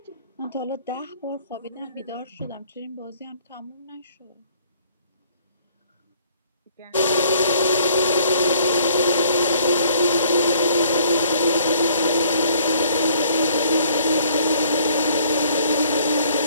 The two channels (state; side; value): inverted; both; correlation -0.60